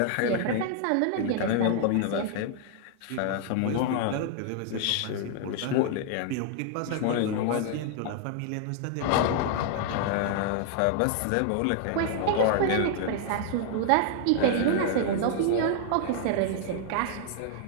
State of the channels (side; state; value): both; different; correlation 0.00